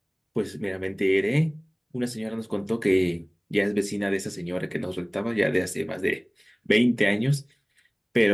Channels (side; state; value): both; identical; correlation 1.00